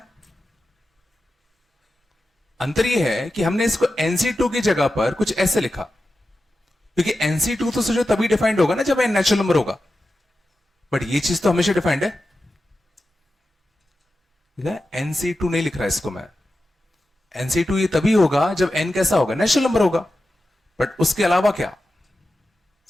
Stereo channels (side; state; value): both; normal; correlation 0.92